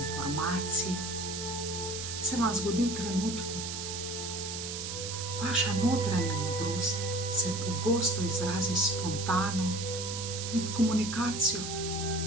se vam zgodi v trenutku. Vaša notranja modrost se pogosto izrazi spontano med komunikacijo.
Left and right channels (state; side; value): noise; right; hiss, 6 dB below the sound